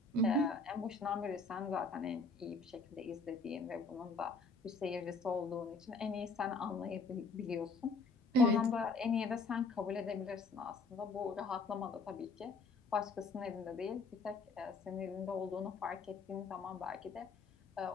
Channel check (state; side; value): quieter; right; 3.7 dB